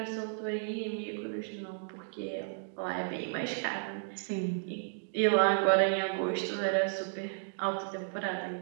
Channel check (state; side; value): silent; left; digital silence